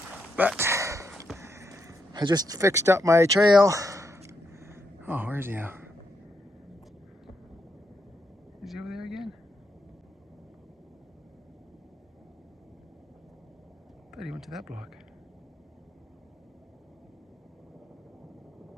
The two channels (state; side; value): normal; both; correlation 0.80